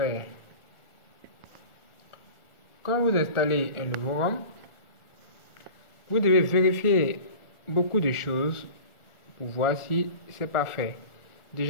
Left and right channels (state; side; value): late; right; 1.4 ms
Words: Quand vous installez un nouveau ROM, vous devez vérifier beaucoup de choses pour voir si c'est parfait.